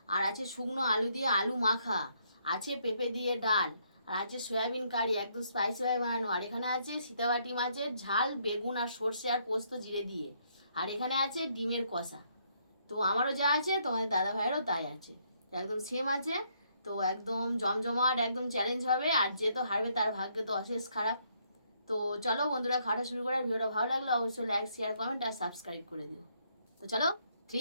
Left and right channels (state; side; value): inverted; both; correlation -0.71